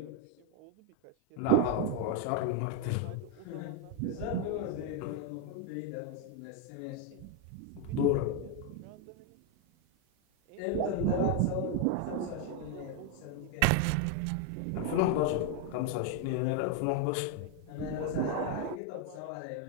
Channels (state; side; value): different; both; correlation 0.01